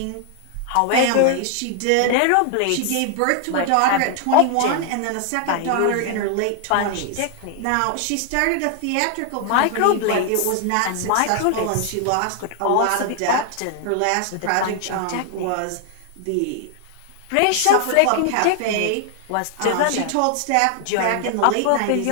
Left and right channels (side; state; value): both; different; correlation 0.00